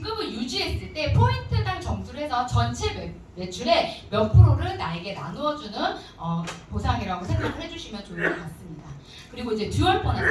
유지했을 때 포인트당 점수를 해서 전체 매출의 몇 프로를 나에게 나누어주는 보상이라고 생각을 해주시면 좋을 것 같습니다. 그리고 이제 듀얼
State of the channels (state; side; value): identical; both; correlation 1.00